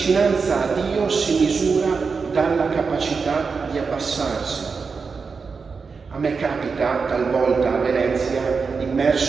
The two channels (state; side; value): quieter; left; 5.0 dB